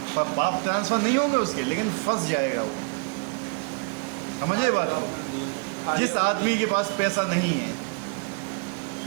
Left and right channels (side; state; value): left; quieter; 34.2 dB